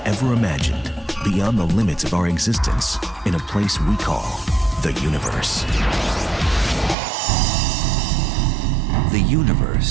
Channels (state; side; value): drops out; left; at 7.0 s